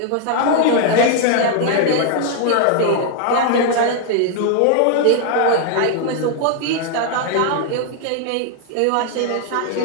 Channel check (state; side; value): different; both; correlation 0.00